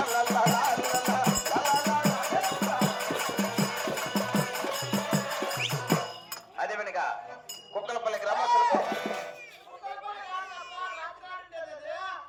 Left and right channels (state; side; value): identical; both; correlation 1.00